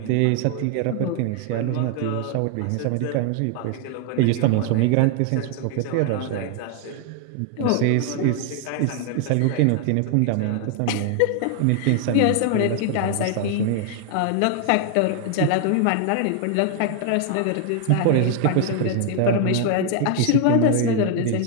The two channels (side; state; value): both; different; correlation 0.00